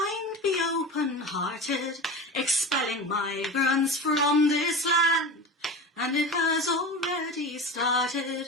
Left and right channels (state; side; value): normal; both; correlation 0.30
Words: be open-hearted, expelling migrants from this land. And it has already